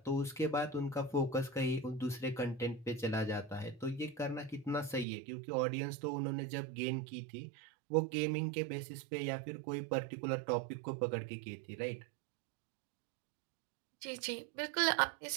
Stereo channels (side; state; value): left; drops out; at 5.1 s